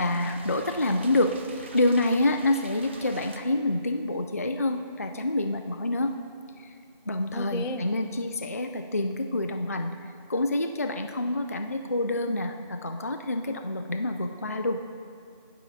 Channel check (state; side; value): inverted; both; correlation -0.72